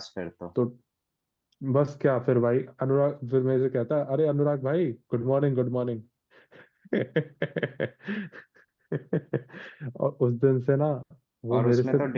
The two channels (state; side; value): identical; both; correlation 1.00